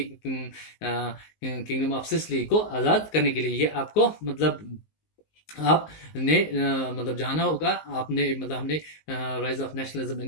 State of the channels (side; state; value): right; late; 19 ms